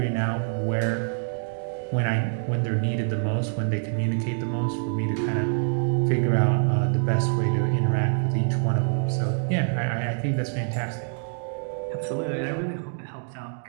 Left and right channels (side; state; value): left; silent; 61 dB below the other